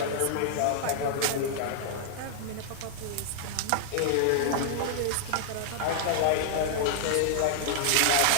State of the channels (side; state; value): both; different; correlation -0.01